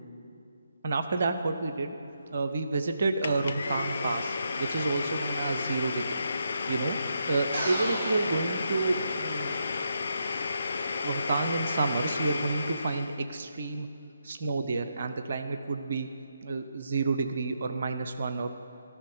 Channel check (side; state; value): both; inverted; correlation -0.81